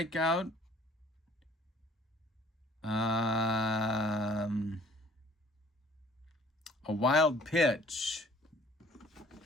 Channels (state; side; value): normal; both; correlation 0.56